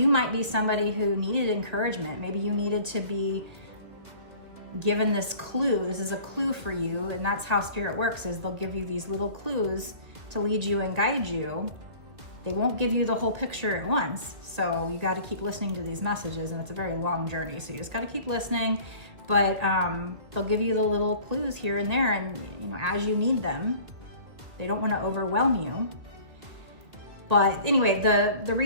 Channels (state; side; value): late; left; 1.9 ms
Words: might be somebody who needed encouragement. Maybe you needed to be given this clue. This is a clue for you, and that's how Spirit works, is they'll give you these little clues to lead you and guide you. They won't give you the whole picture at once, so you got to keep listening to these messages, and it's a very long journey, so you just got to keep listening. But they'll give you the little clues here and there, and as you need them. They don't want to overwhelm you. But anyway, the